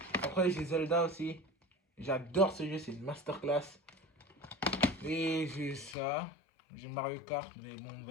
Après, j'ai Zelda aussi. J'adore ce jeu, c'est une masterclass. Et j'ai ça. J'ai Mario Kart, mais bon,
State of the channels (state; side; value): drops out; right; at 6.0 s